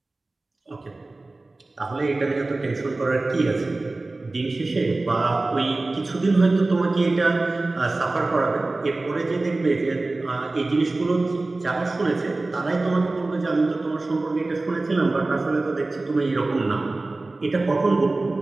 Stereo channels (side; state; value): left; quieter; 3.2 dB